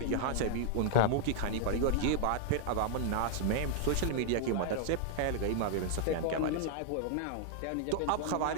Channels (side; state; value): both; different; correlation 0.00